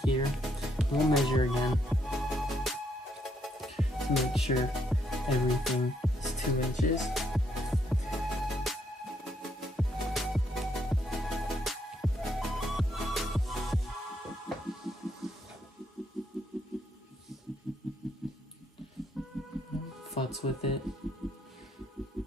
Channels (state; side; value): normal; both; correlation 0.74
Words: here. We'll measure again to make sure everything is 2 inches. Futz with it.